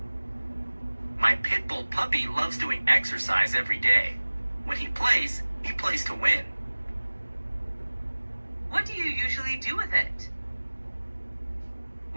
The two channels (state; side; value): inverted; both; correlation -1.00